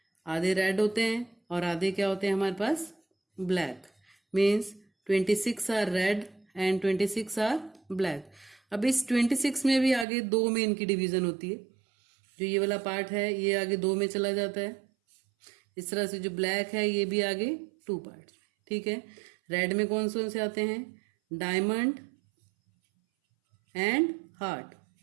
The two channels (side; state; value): left; drops out; at 10.1 s